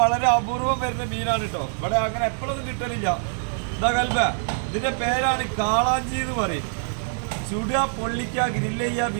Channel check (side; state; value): left; silent; 62 dB below the other